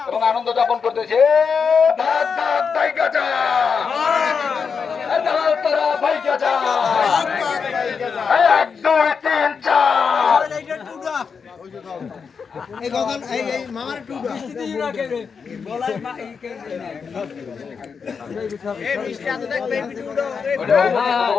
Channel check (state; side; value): quieter; right; 5.8 dB